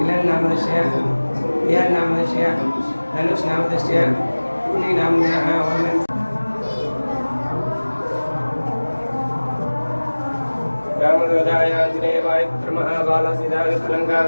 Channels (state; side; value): inverted; both; correlation -1.00